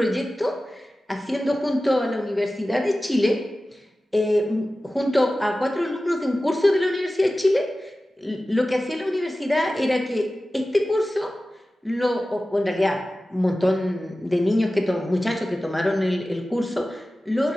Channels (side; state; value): both; normal; correlation 0.95